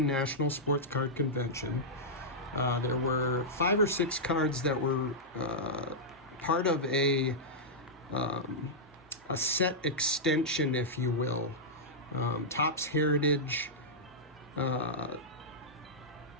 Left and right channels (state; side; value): normal; both; correlation -0.10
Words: National Sports Card Convention. There were 5 or 6 cards that were part of a set extension, if you will. Topps Heritage